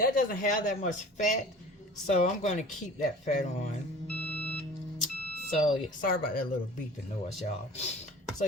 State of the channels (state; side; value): normal; both; correlation 0.43